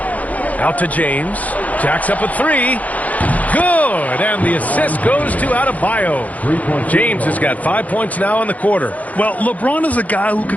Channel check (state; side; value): late; right; 0.073 ms